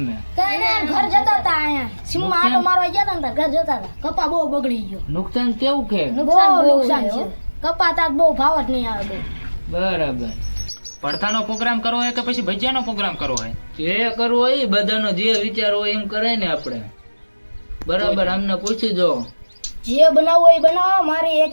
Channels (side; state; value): both; inverted; correlation -1.00